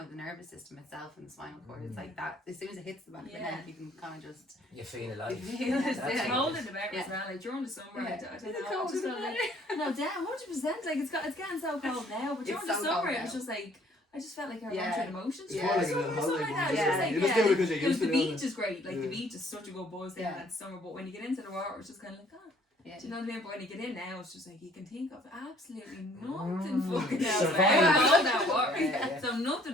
the nervous system itself and the spinal cord. It's like that, as soon as it hits the back of the Yeah. neck, you can kind of just, you feel alive. You feel it, That's yeah. It's what cold it in is. the better as well. Like during the summer, I don't Is know. it I cold just in felt the like no, damn, 100%. Like it's getting so cold now, but during It's the so summer, cold it was now. just like I just felt like I Yeah. went through the motions. Yeah. It's more like a Summer little or something holiday. like that. one, It's Yeah. just like, You just do it because you're used to the it. beach is great. Like Yeah. the beach is such a good buzz there Yeah. that summer, but when you get into the water, it's just kind of like, oh, yeah. do you know what I mean? But when you get in now, it's just like you can think of absolutely nothing fucking else. Survive. Like, all that water. Yeah. So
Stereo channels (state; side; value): normal; both; correlation 0.60